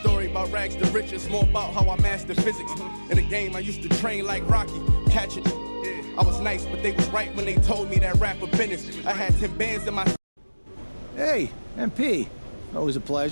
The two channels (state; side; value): inverted; both; correlation -1.00